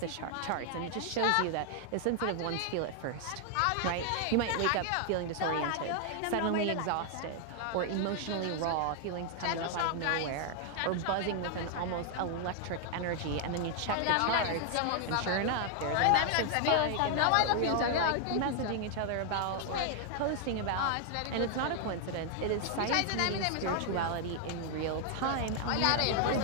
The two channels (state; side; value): different; both; correlation 0.00